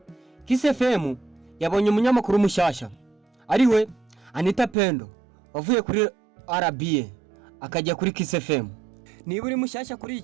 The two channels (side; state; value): left; drops out; at 4.8 s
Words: Kiss FM yabonye umunyamakuru mushyashya, ariwe Anita Pendo wavuye kuri RBA akajya kuri Kiss FM. Niba uri mushyashya kuri